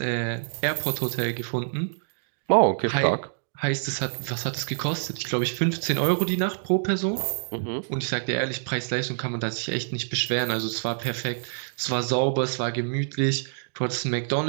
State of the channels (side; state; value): left; silent; digital silence